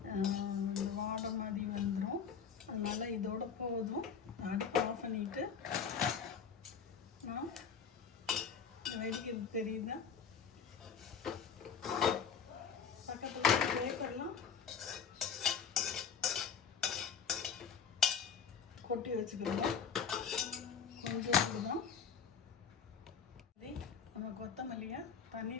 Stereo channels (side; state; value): right; quieter; 6.8 dB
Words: வாடை மாதிரி வந்துடும். அதனால் இதோட போதும். அடுப்பு ஆஃப் பண்ணிவிட்டு வெடிக்கிறது தெரியுது. பக்கத்தில் பேப்பர்லாம் கொட்டி வச்சுக்கலாம். கொஞ்சம் தான் நம்ம கொத்தமல்லியை